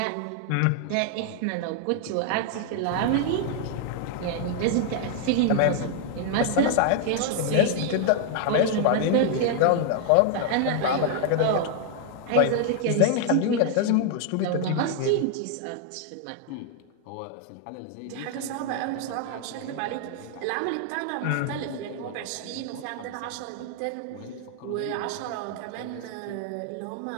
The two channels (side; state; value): both; different; correlation 0.00